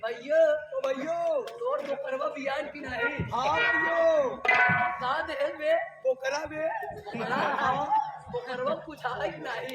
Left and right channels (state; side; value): identical; both; correlation 1.00